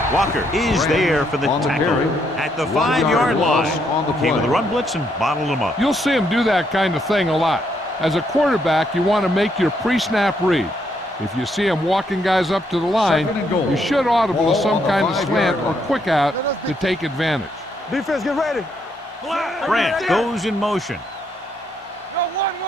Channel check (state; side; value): normal; both; correlation 0.74